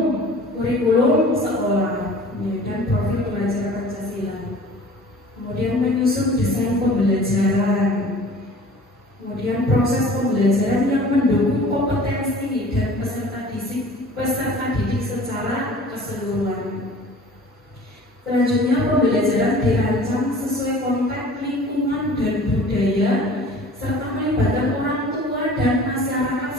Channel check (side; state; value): both; normal; correlation 0.45